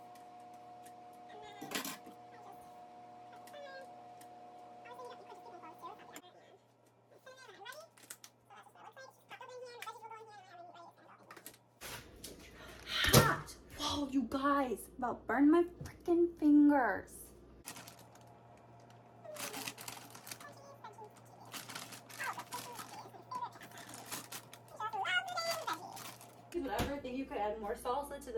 Hot! Whoa, you guys, about burned my freaking fingers. Whatever, I think you could add more salsa to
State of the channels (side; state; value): both; identical; correlation 1.00